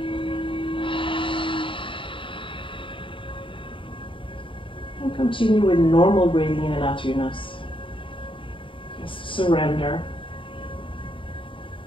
And continue with normal breathing in and out through your nose. Just surrender.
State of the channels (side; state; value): right; late; 0.25 ms